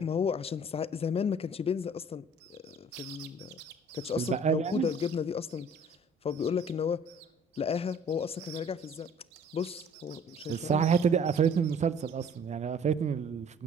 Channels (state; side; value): normal; both; correlation 0.53